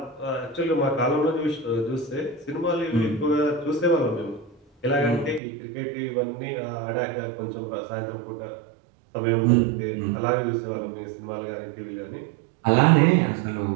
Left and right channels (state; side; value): drops out; left; at 5.4 s